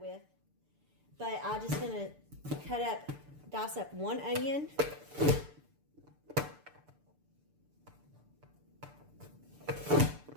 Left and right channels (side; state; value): left; late; 6.8 ms